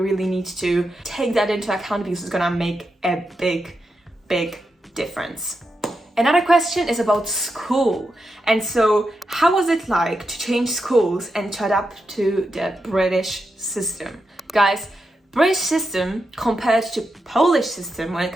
really need to take that into account, because it's gonna make a big, big difference. Another question is about school. And so how was it like to change schools and to adapt to the British system? Guys, British system compared to Polish system when it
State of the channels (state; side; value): normal; both; correlation 0.86